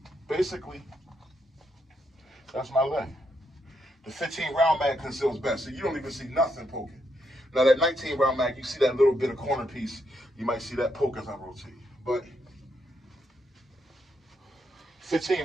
basically, that's my leg. The 15 round mag conceals best, so you don't even see nothing poking. Now that 19 round mag, you see that little bit of corner piece, you might see that poke as I rotate. But 15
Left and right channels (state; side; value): normal; both; correlation 0.78